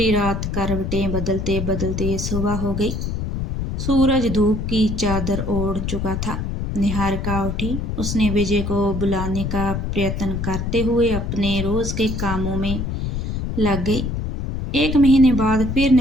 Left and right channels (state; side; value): noise; left; rumble, 3 dB below the sound